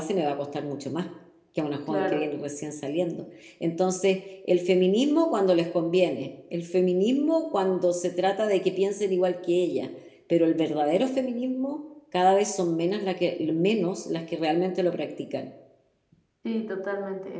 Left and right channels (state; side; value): identical; both; correlation 1.00